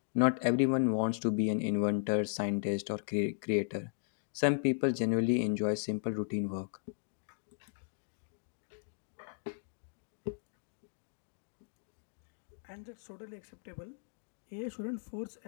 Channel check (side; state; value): right; silent; digital silence